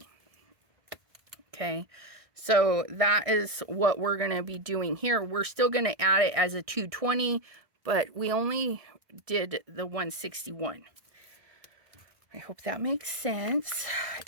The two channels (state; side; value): late; left; 1.6 ms